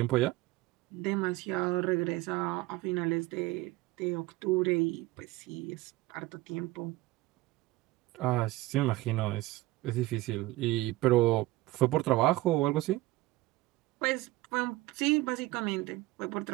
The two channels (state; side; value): quieter; left; 18.6 dB